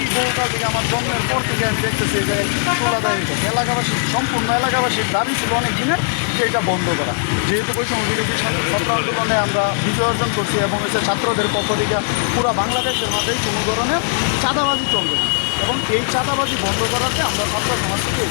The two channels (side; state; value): right; silent; 65 dB below the other